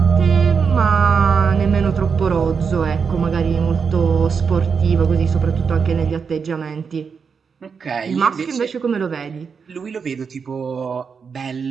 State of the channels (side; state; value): left; quieter; 5.9 dB